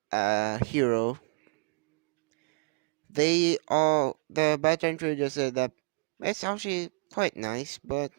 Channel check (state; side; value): quieter; left; 38.3 dB